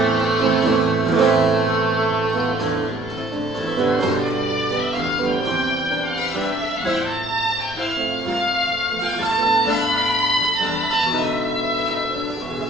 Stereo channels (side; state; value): right; noise; rumble, 22 dB below the sound